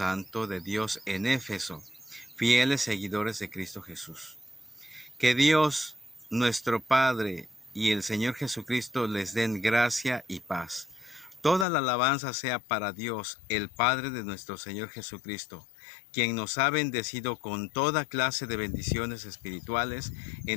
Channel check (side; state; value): right; drops out; at 11.7 s